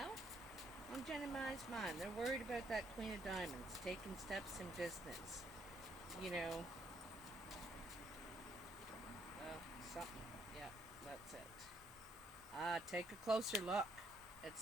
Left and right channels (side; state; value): both; normal; correlation 0.69